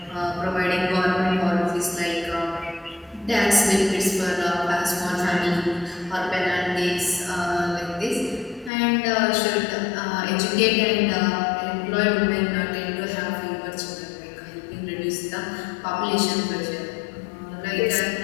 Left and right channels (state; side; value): drops out; right; at 8.7 s